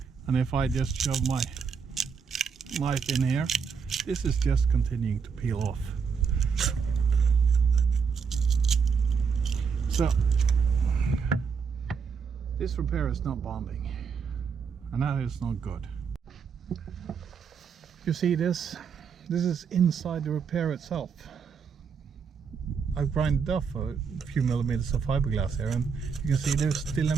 and if I just shove my knife in here, this is just continuing to peel off. So this repair is not bonding, and that is not good. You see this is inside the repair itself. I've grinded off a few millimeters of fiberglass here, and you can see there's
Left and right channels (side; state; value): left; quieter; 6.0 dB